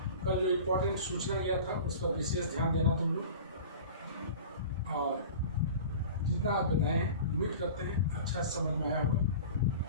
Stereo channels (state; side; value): inverted; both; correlation -0.38